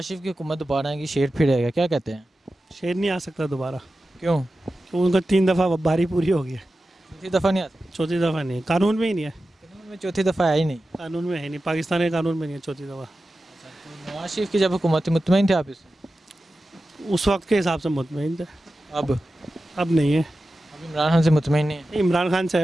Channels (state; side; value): normal; both; correlation 0.93